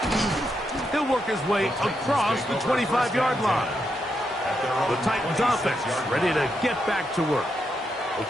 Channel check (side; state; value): both; normal; correlation 0.82